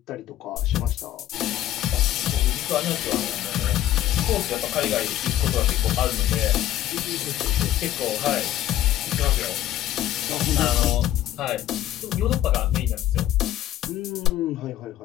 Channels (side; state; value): right; quieter; 13.0 dB